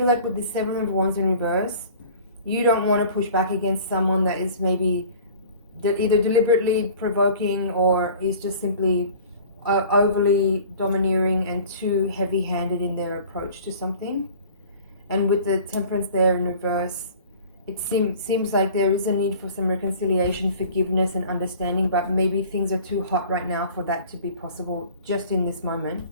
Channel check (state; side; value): inverted; both; correlation -0.45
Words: like with the Seven of Wands in reverse, you don't want to push back against someone that is maybe either deliberately provoking or is just simply overly domineering and too heavy-handed in their approach to something. And with the Temperance there in reverse, it seems like there is a need for some reconciliation, forgiveness and understanding, but maybe things are too hot right now for that to be possible just in this moment.